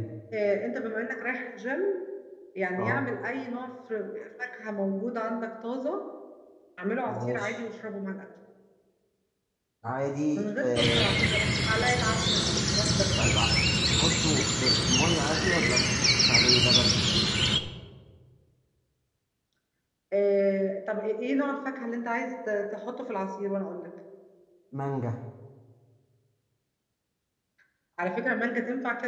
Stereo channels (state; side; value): identical; both; correlation 1.00